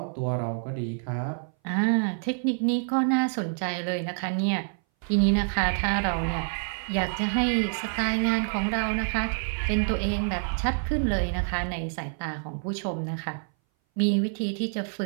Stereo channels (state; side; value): silent; left; 59 dB below the other